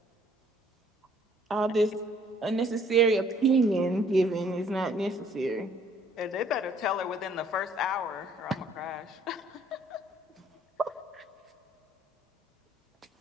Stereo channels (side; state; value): both; normal; correlation 0.61